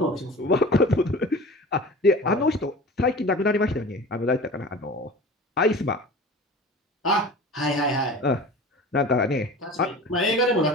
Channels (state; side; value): normal; both; correlation 0.37